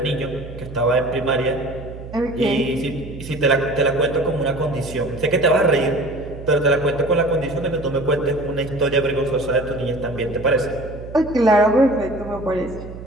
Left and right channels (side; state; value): right; noise; hum, 13 dB below the sound